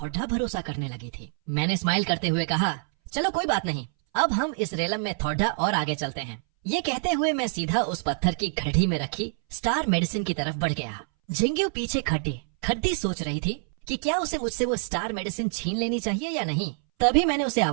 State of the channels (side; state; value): left; silent; 60 dB below the other